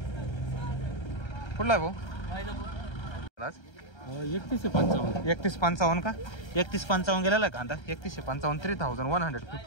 कुठला भाऊ? 3155 का? 3155 गेलेला कांदा. 3155.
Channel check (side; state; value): right; late; 1.3 ms